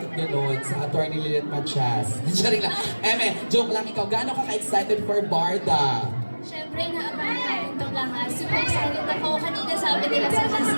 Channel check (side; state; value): both; inverted; correlation -1.00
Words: gano'n? Sa Attorney Lilith Machas. Sorry lang. Joke lang ikaw. Gaano ka ka-excited for Barda? Siyempre, naabangan natin itong lahat. Super excited ako. Kanina sabi nila sa